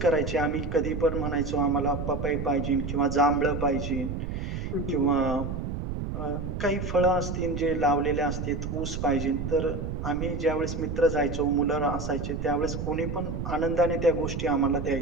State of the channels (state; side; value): noise; right; rumble, 4 dB below the sound